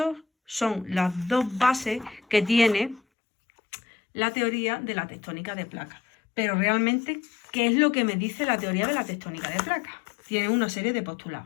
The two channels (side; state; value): right; drops out; at 3.0 s